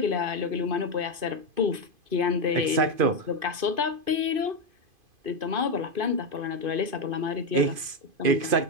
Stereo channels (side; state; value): left; late; 2.5 ms